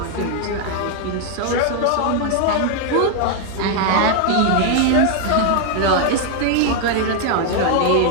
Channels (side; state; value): both; different; correlation 0.00